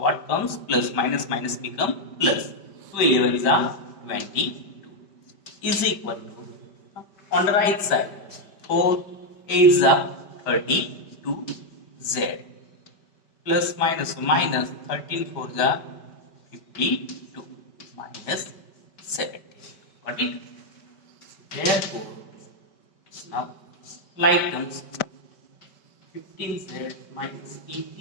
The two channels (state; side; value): late; right; 5.1 ms